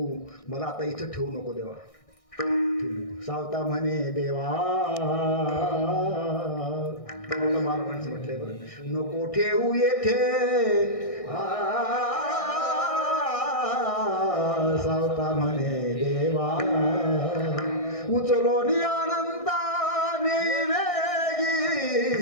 मला आता इथं ठेवू नको देवा. सावता म्हणे देवा माणसं म्हटलंय बरं, नको ठेवू येथे सावता म्हणे देवा उचलो नि आनंदाने वेगी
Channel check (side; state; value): right; late; 1.6 ms